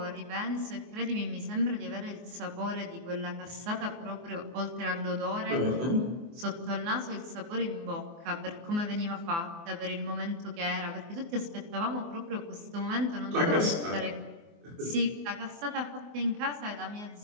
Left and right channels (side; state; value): left; late; 24 ms